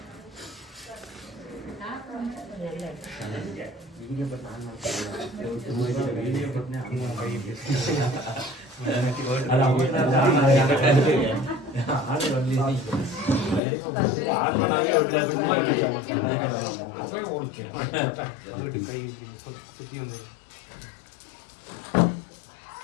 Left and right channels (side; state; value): right; drops out; at 13.6 s